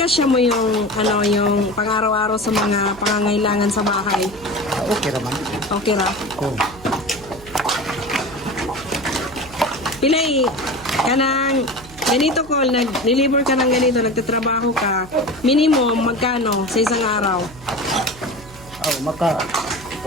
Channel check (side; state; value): right; noise; hum, 19 dB below the sound